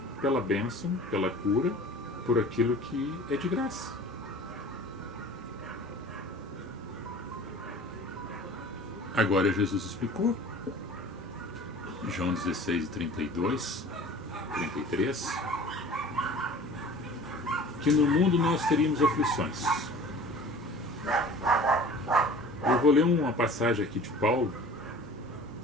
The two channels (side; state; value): both; normal; correlation 0.43